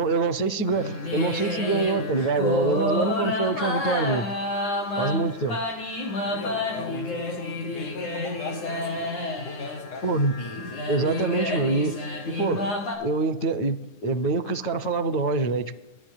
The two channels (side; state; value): right; late; 9.7 ms